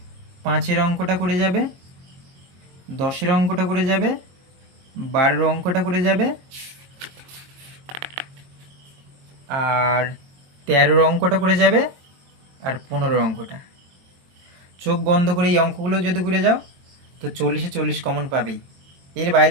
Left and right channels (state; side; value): late; left; 22 ms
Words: 5-এর অঙ্কটা করে যাবে, 10-এর অঙ্কটা করে যাবে, 12-এর অঙ্কটা করে যাবে আর 13-এর অঙ্কটা করে যাবে আর 15-এর অঙ্কটা। চোখ বন্ধ করে এই অঙ্কগুলো যদি করে যাও তো 40-এ 40 কমন পাবেই। এর